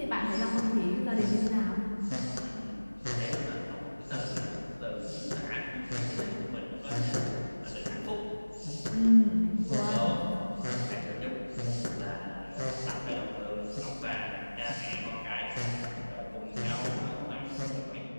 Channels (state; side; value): inverted; both; correlation -1.00